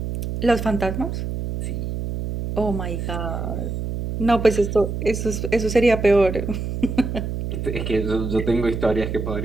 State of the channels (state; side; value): noise; right; hum, 4 dB below the sound